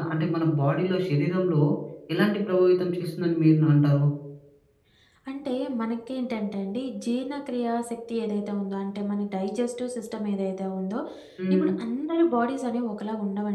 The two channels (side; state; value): both; identical; correlation 1.00